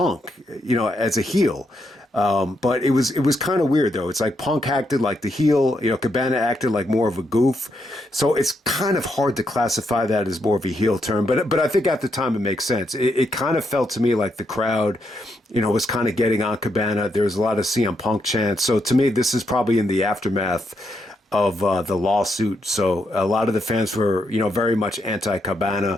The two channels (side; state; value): both; normal; correlation 0.79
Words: as a heel. But it was kind of weird though. It's like Punk acted like the heel, Cabana acted like more of a goof. So it's kind of hard to classify that as more of a heel term. But I think at the time it makes sense. It kind of felt to me like the crowd, was kind of getting on Cabana. There was a lot of CM Punk chants. So to me, this is probably in the aftermath of the lawsuit. So a lot of the fans were, very much anti-Cabana,